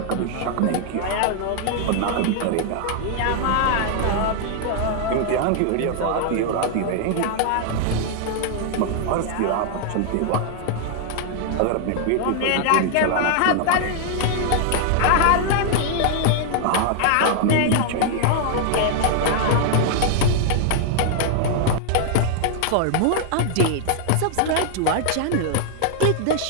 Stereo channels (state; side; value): different; both; correlation -0.01